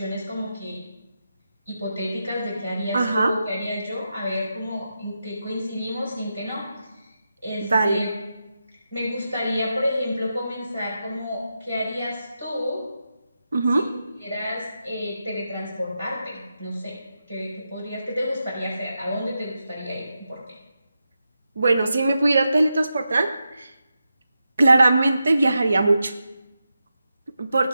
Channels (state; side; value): inverted; both; correlation -0.88